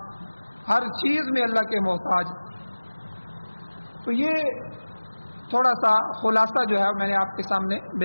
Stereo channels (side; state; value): both; inverted; correlation -1.00